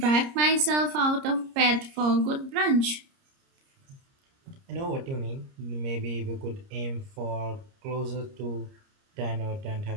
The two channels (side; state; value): left; late; 30 ms